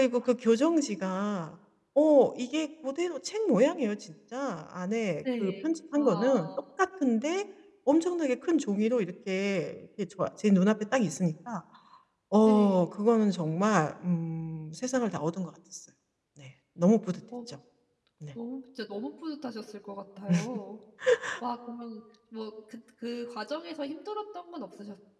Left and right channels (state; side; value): identical; both; correlation 1.00